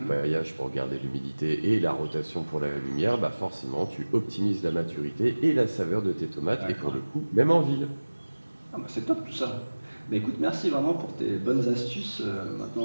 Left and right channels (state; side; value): inverted; both; correlation -1.00